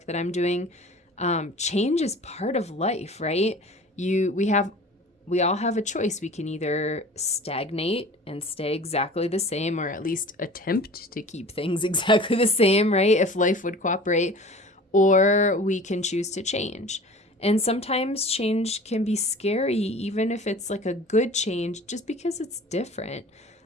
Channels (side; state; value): both; normal; correlation 0.42